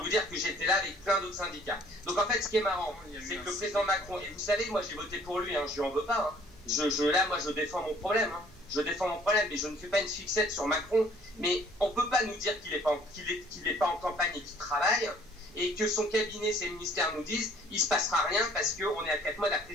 dire que j'étais là avec plein d'autres syndicats. Donc en fait, ce qui est marrant, c'est que le président Macron, et vous savez, moi j'ai voté pour lui, hein, je lui en veux pas, hein. Là, moi, je défends mon problème. Hein. Je défends mon problème, mais je ne fais pas une fixette sur Macron. Mais on ne peut pas nous dire qu'il n'est pas en campagne et qu'il travaille, et que son cabinet, ses ministères nous disent il ne se passera rien parce qu'on est à 4 mois de la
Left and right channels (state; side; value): normal; both; correlation 0.57